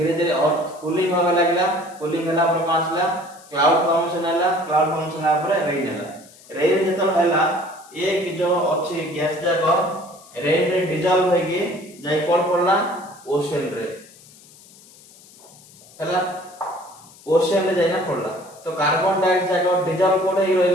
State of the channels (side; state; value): left; noise; hiss, 24 dB below the sound